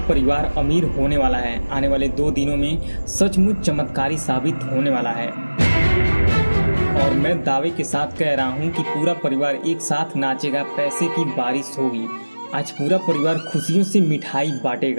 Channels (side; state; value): both; inverted; correlation -1.00